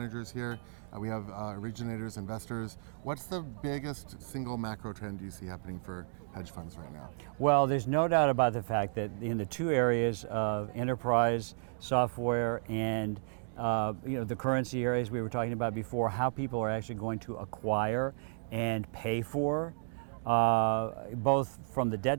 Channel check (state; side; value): silent; left; digital silence